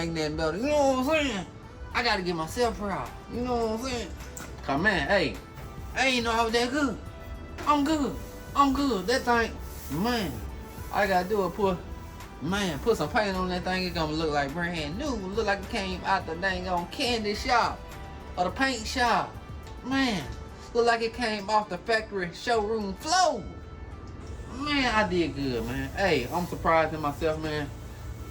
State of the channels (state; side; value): identical; both; correlation 1.00